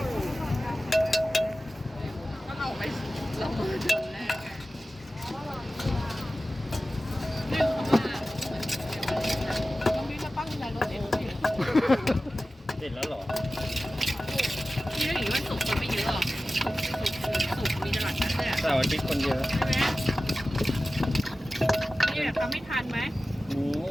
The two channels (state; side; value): normal; both; correlation 0.95